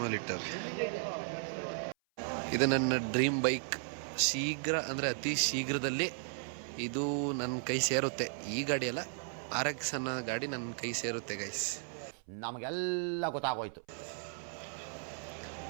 ಇಟ್ಟಾರೆ. ಇದು ನನ್ನ ಡ್ರೀಮ್ ಬೈಕ್. ಶೀಘ್ರ ಅಂದರೆ ಅತಿ ಶೀಘ್ರದಲ್ಲಿ ಇದು ನನ್ನ ಕೈ ಸೇರುತ್ತೆ. ಈ ಗಾಡಿ ಅಲ್ಲ, RX ಅನ್ನೋ ಗಾಡಿ ನನ್ನ ಕೈ ಸೇರುತ್ತೆ ಗೈಸ್. ನಮಗೆಲ್ಲ ಗೊತ್ತಾಗೋಯ್ತು.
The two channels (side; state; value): left; silent; 54 dB below the other